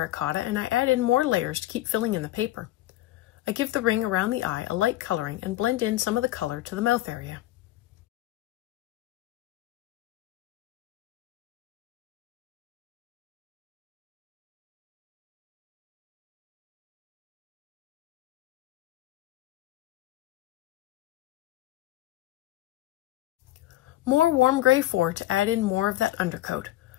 and I add in more layers to keep filling in the paper. I give the ring around the eye a light coloring and blend in some of the color to the mouth area. More warm gray 4 to add in more of that undercoat.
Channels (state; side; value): quieter; right; 15.5 dB